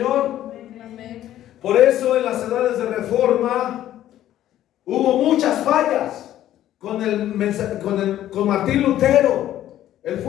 Amén. Por eso en las edades de reforma hubo muchas fallas con Martín Lutero. Él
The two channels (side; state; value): right; quieter; 12.6 dB